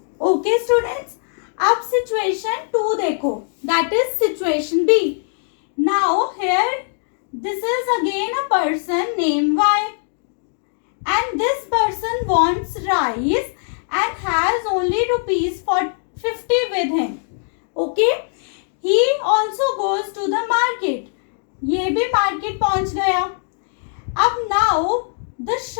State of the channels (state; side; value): silent; right; digital silence